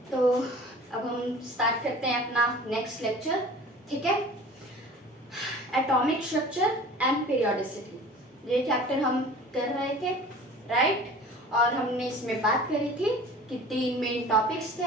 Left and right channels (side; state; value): both; normal; correlation 0.43